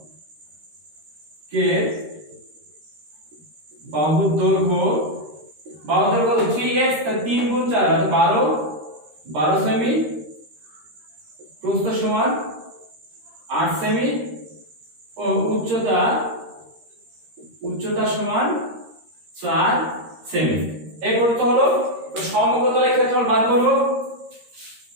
বাহুর দৈর্ঘ্য 3x 3 গুণ 4 12 সেমি, প্রস্থ সমান 8 সেমি ও উচ্চতা সমান 4 সেমি। এই করতে হলো সমকোণের ক্ষেত্রফল বার করব।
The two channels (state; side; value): late; left; 13 ms